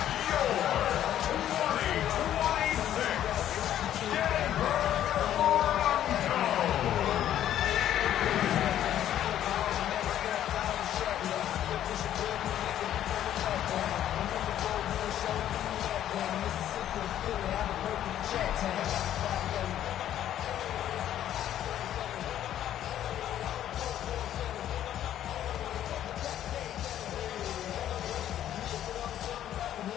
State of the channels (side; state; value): right; quieter; 11.4 dB